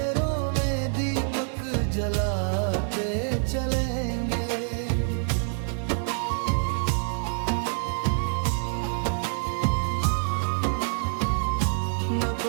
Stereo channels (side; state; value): left; silent; 60 dB below the other